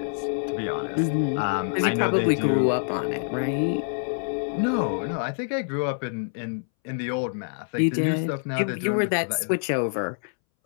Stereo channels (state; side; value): silent; right; 61 dB below the other